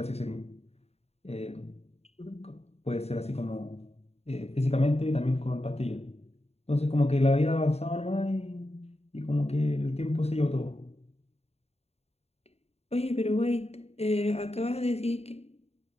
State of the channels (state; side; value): late; right; 0.30 ms